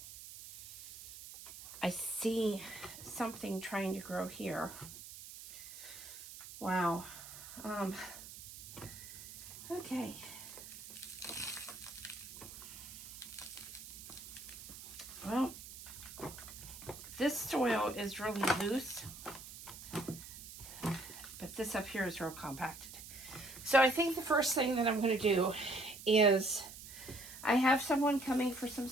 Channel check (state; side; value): noise; right; hiss, 13 dB below the sound